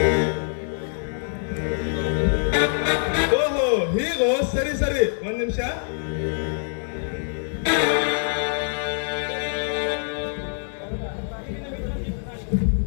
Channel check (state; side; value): silent; right; digital silence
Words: ಓಹೋ, ಹೀಗೋ? ಸರಿ ಸರಿ, ಒಂದ್ ನಿಮಿಷ.